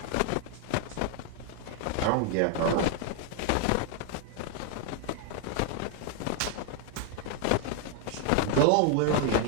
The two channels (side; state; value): both; different; correlation 0.01